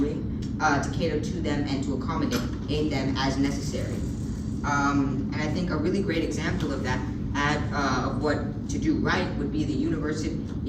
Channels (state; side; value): identical; both; correlation 1.00